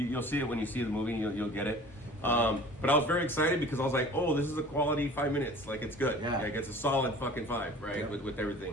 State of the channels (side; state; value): both; normal; correlation 0.44